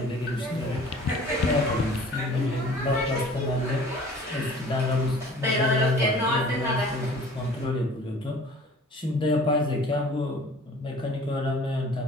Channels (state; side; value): normal; both; correlation 0.48